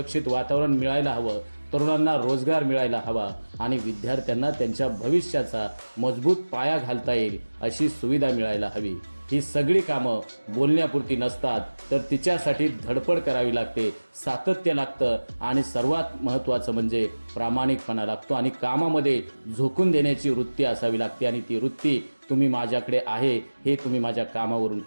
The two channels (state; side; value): inverted; both; correlation -1.00